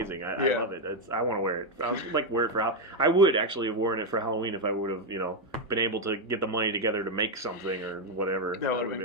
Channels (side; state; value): both; normal; correlation 0.03